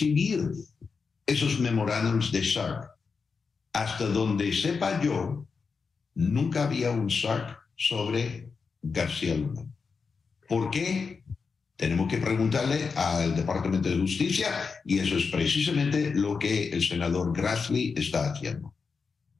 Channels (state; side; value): quieter; right; 5.1 dB